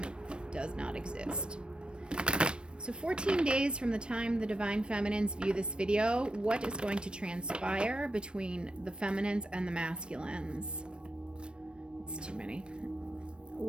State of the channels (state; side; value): late; left; 0.055 ms